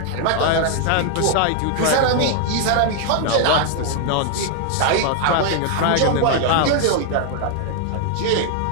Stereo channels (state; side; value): different; both; correlation 0.00